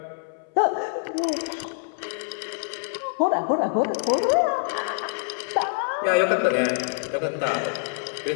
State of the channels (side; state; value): right; silent; 61 dB below the other